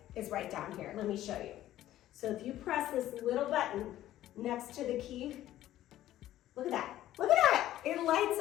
is right down here. Let me show you. So if you press this little button next to the key, look at that. Look at that, it lights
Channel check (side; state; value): right; quieter; 13.6 dB